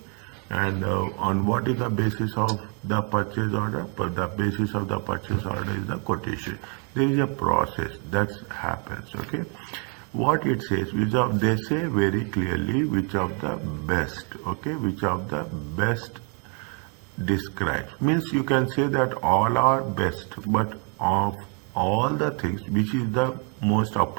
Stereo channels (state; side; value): quieter; left; 38.9 dB